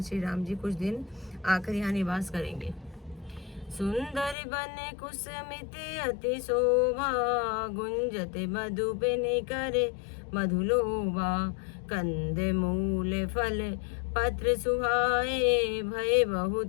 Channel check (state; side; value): drops out; right; at 4.4 s